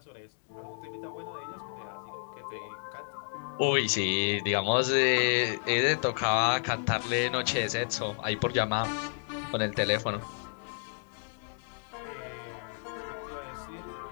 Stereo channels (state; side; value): silent; right; 57 dB below the other